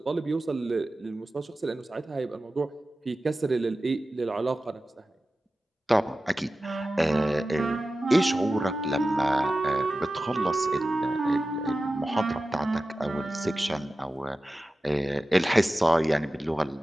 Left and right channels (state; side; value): normal; both; correlation 0.95